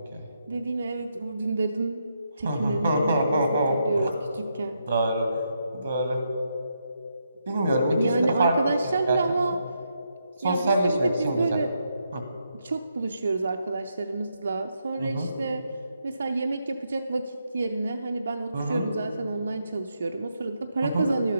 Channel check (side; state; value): both; inverted; correlation -0.80